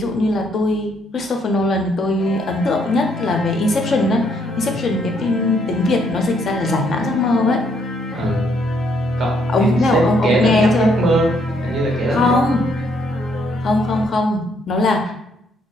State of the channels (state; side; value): normal; both; correlation 0.70